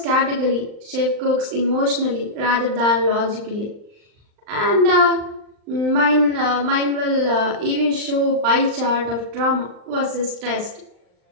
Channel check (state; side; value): late; left; 39 ms